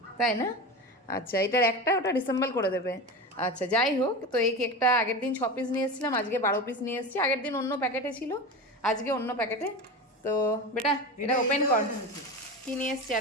তাই না? আচ্ছা, এটার একটা ওটা ডিসেম্বল করে দেবে। আচ্ছা, যাই হোক, তো এই কেকটা আগের দিন 6 পিস নিয়ে এসেছিলাম, আজকে 12 পিস নিয়ে এসেছি। আগের দিন অন্য প্যাকেটে ছিল, আজকে অন্য প্যাকেটে। তো বেটা এটা ওপেন কর, কি নিয়ে এসছি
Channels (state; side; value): normal; both; correlation 0.26